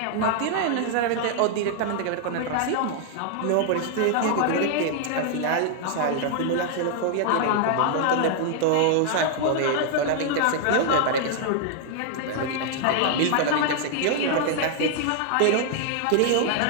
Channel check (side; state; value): both; different; correlation -0.01